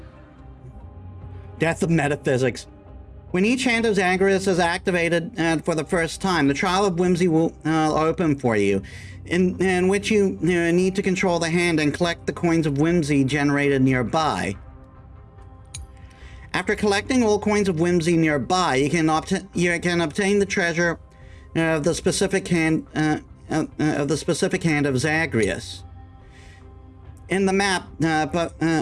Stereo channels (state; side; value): identical; both; correlation 1.00